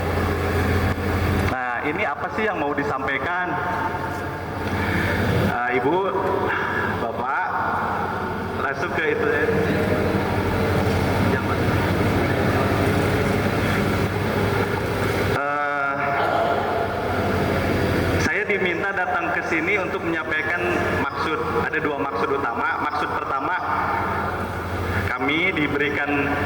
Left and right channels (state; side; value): identical; both; correlation 1.00